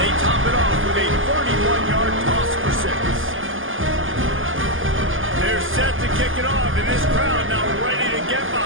top it off with a 31-yard toss for 6. They're set to kick it off, and this crowd now ready to get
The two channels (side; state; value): left; late; 0.58 ms